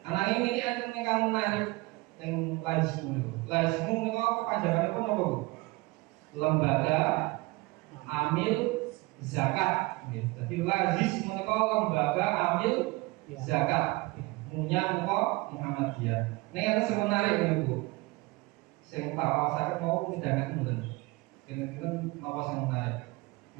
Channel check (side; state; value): left; quieter; 23.2 dB